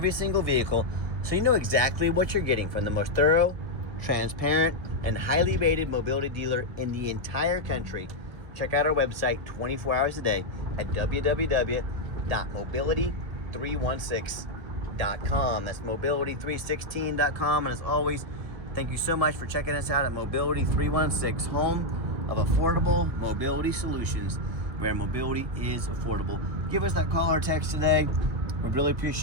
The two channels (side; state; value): left; late; 1.8 ms